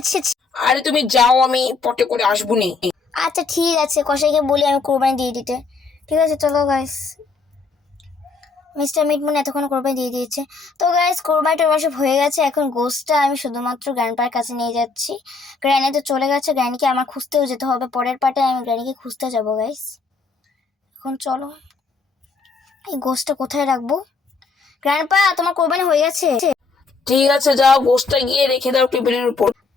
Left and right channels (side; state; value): right; quieter; 4.4 dB